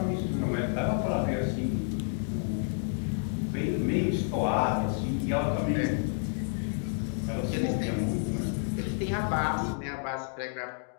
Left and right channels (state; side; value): silent; right; digital silence